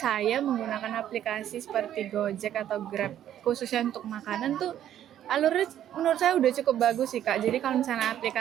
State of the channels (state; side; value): quieter; left; 11.1 dB